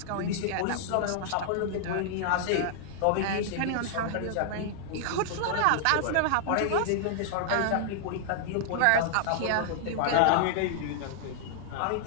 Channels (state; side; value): different; both; correlation -0.01